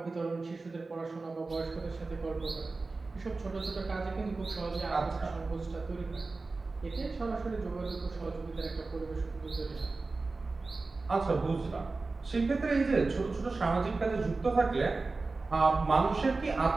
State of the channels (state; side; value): quieter; left; 3.7 dB